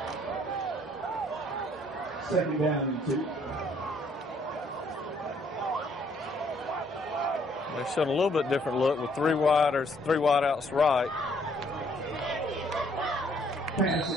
Second down and 2. They're showing a little bit different look with 3 wideouts right. Pass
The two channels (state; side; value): normal; both; correlation 0.65